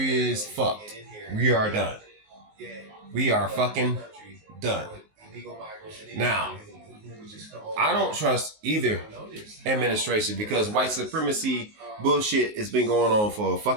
is fucked. We are done. We are fucking done. Now, I don't trust either administration because white supremacy bullshit has been going on for a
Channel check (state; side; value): late; left; 19 ms